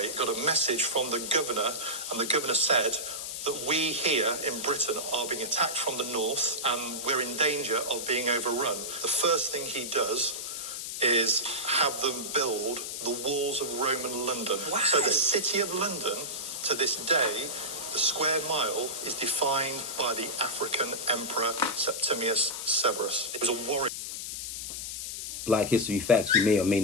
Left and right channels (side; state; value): left; noise; hiss, 6 dB below the sound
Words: got a message from the governor, and the governor said that we here in Britain are being attacked from the north and we're in danger of being overrun. The first thing he does is have them build the walls of Roman London. Wow. So the city of London, to this day, the square mile is defined by the African emperor Septimius Severus. It was a warrior. Black history facts you may or may